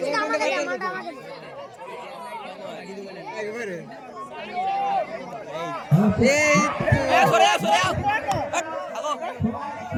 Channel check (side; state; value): both; identical; correlation 1.00